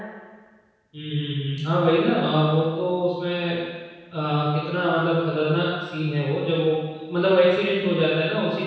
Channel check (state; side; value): identical; both; correlation 1.00